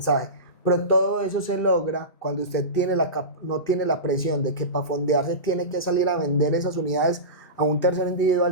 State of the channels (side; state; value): right; late; 2.7 ms